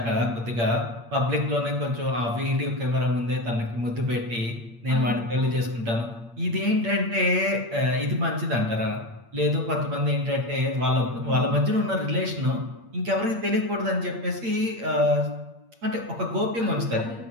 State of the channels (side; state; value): left; late; 8.7 ms